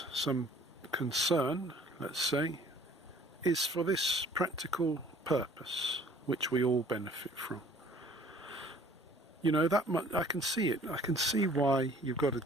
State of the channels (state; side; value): normal; both; correlation 0.54